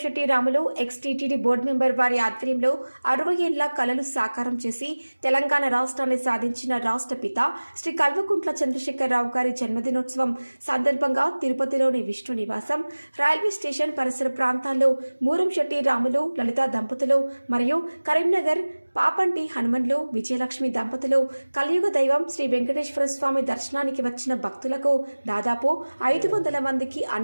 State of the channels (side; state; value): both; inverted; correlation -1.00